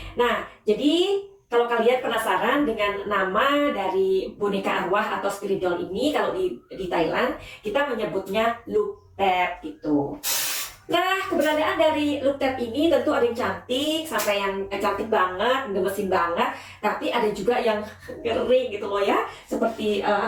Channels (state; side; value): identical; both; correlation 1.00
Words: Nah, jadi kalau kalian penasaran dengan nama dari boneka arwah atau spirit doll ini, kalau di Thailand kita menyebutnya Luc Thep gitu. Nah, keberadaan dari Luc Thep ini tentu ada yang cantik, sampai yang cantik banget, gemesin banget, tapi ada juga yang ngeri gitu loh ya, seperti